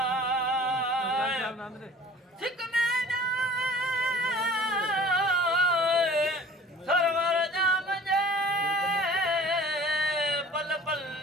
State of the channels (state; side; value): normal; both; correlation 0.47